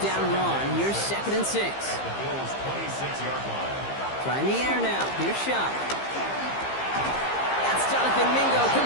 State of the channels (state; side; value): late; right; 15 ms